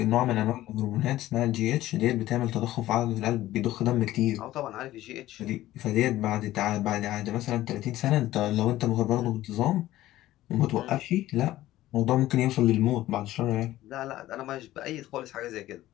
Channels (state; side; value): quieter; right; 15.2 dB